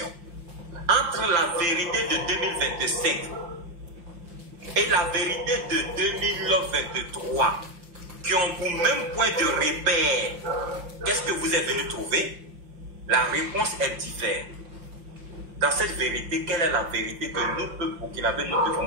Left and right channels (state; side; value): late; left; 5.7 ms